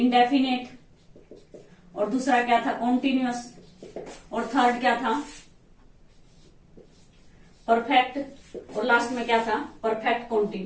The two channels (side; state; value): both; identical; correlation 1.00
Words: और दूसरा क्या था? कॉन्टिन्यूअस, और थर्ड क्या था? परफेक्ट, और लास्ट में क्या था? Perfect